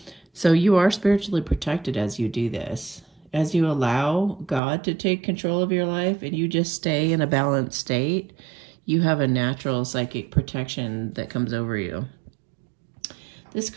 So you are spiritually protected as you do this. As you allow God to take control of your life and you just stay in a balanced state, you have a natural psychic protection that comes over you. This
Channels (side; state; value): left; drops out; at 4.6 s